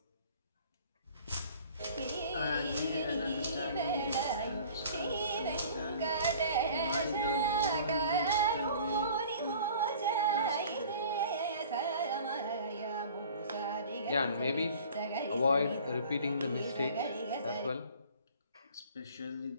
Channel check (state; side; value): inverted; both; correlation -0.48